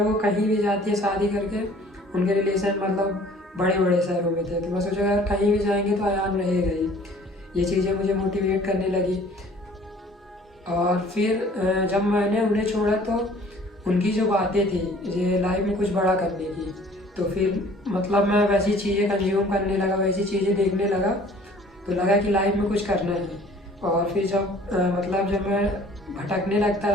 वो कहीं भी जाती है शादी करके, उनके रिलेशन मतलब बड़े बड़े शहरों में थे, तो मैं सोचा अगर कहीं भी जाएंगे तो आयान रहेगा ही। ये चीज़ें मुझे मोटिवेट करने लगी। और फिर जब मैंने उन्हें छोड़ा तो उनकी जो बातें थी ये लाइफ में कुछ बड़ा करने की, तो फिर मतलब मैं वैसी चीज़ें कंज्यूम करने लगा, वैसी चीज़ें देखने लगा, तो लगा कि लाइफ में कुछ करना है। और फिर जब मैं भटकने लगता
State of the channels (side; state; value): both; normal; correlation 0.52